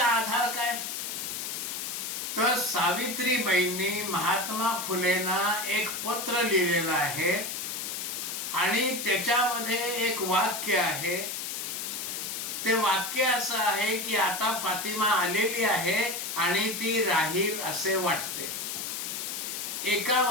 आधार काय? तर सावित्रीबाईंनी महात्मा फुलेंना एक पत्र लिहिलेलं आहे आणि त्याच्यामध्ये एक वाक्य आहे. ते वाक्य असं आहे की आता फातिमा आलेली आहे आणि ती राहील असे वाटते. एका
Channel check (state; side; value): noise; left; hiss, 4 dB below the sound